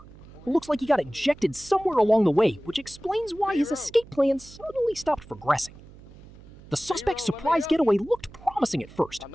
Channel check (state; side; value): noise; right; hum, 21 dB below the sound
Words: It looks like he got ejected somewhere along the way, which explains why his escape plan suddenly stopped progressing. The suspect's surprise getaway looked promising at first,